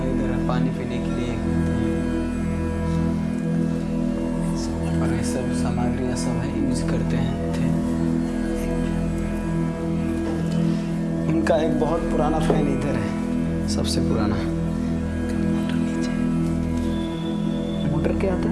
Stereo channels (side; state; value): both; identical; correlation 1.00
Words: इधर पानी पीने के लिए, और ये सब सामग्रियाँ सब है यूज करते हैं थे। उनका एक बहुत पुराना फैन इधर है, सबसे पुराना। मोटर क्या आता